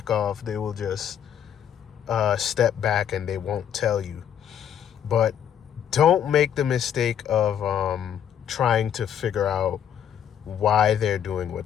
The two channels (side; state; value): right; quieter; 9.2 dB